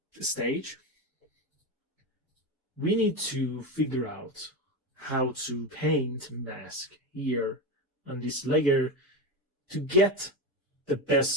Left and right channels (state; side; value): normal; both; correlation 0.18